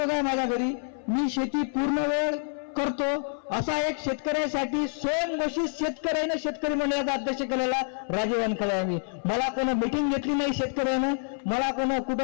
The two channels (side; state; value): right; silent; 60 dB below the other